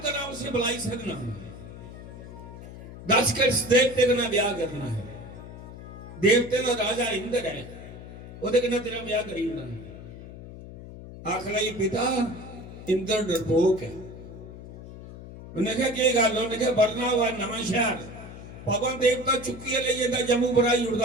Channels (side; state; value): left; noise; hum, 14 dB below the sound